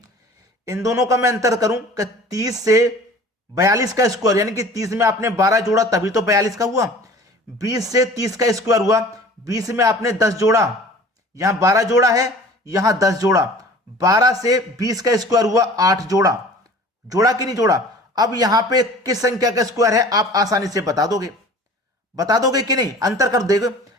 इन दोनों का मैं अंतर करूं कि 30 से 42 का स्क्वायर, यानी कि 30 में आपने 12 जोड़ा तभी तो 42 का हुआ। 20 से 30 का स्क्वायर हुआ, 20 में आपने 10 जोड़ा, यहां 12 जोड़ा है, यहां 10 जोड़ा। 12 से 20 का स्क्वायर हुआ, 8 जोड़ा, जोड़ा कि नहीं जोड़ा। अब यहां पे किस संख्या का स्क्वायर है आप आसानी से बता दोगे, बता दोगे कि नहीं, अंतर कर देगा।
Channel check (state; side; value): normal; both; correlation 0.45